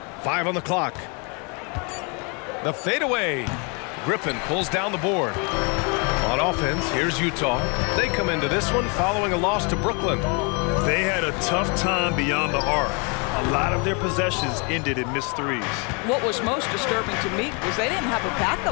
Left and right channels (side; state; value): right; quieter; 33.4 dB